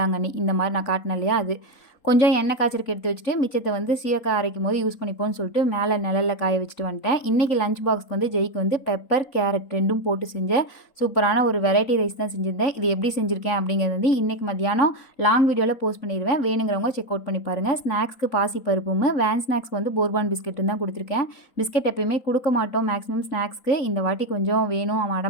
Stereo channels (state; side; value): late; right; 3.5 ms